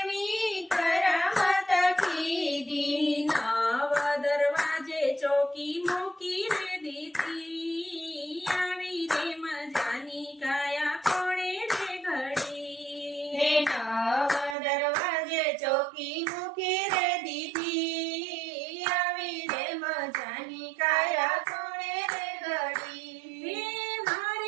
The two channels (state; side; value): drops out; left; at 14.6 s